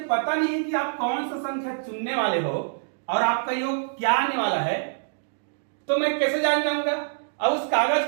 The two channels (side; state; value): left; silent; digital silence